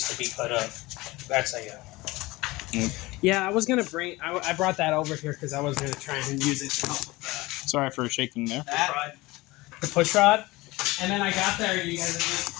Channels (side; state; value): right; quieter; 20.9 dB